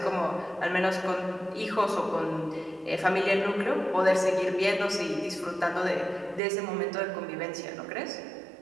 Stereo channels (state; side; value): drops out; left; at 6.4 s